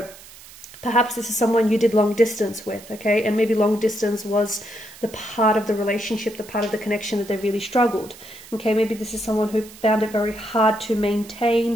perhaps this is someone you did long distance with, okay? And maybe long distance was the part of the relationship, the part of the connection that they really struggled, okay? Maybe this is someone who found it very hard to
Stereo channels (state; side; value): noise; right; hiss, 19 dB below the sound